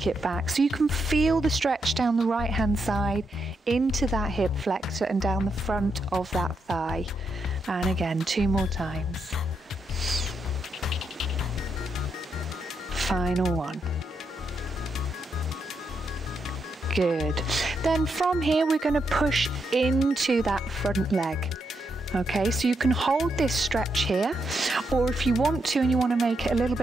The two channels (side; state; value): both; normal; correlation 0.81